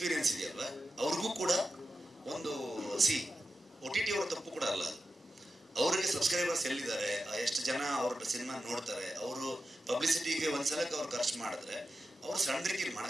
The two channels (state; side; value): normal; both; correlation 0.91